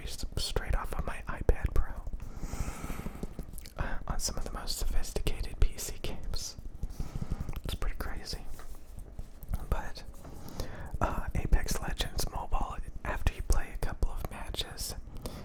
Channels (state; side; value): identical; both; correlation 1.00